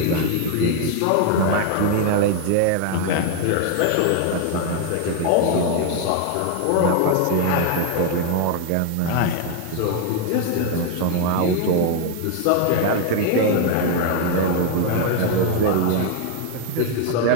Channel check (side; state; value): both; different; correlation 0.01